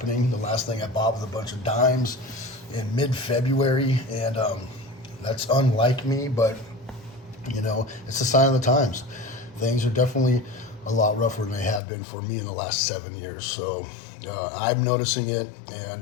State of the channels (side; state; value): right; drops out; at 11.8 s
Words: The last thing I bought was a bunch of dimes in mid-February, and that's unlike me, but you know, it's a sign of the times. Things are definitely a lot rougher than they have been for me in the last 7 years. So I'm noticing it,